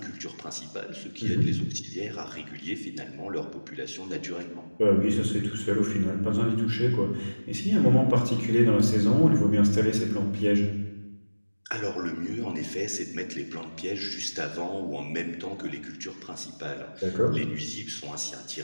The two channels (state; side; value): inverted; both; correlation -1.00